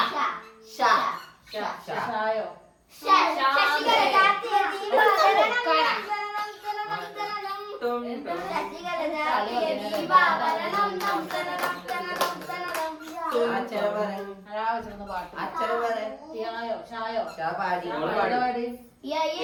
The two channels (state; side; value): identical; both; correlation 1.00